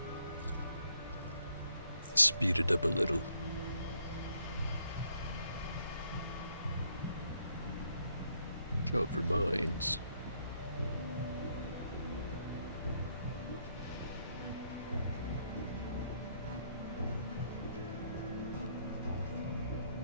Speed it up a little. Job for mines.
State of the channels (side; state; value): both; inverted; correlation -0.71